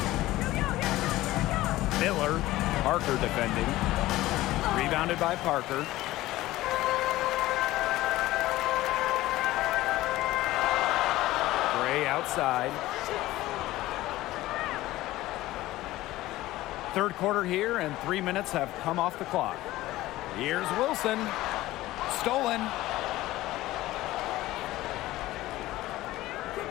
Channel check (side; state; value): right; quieter; 16.8 dB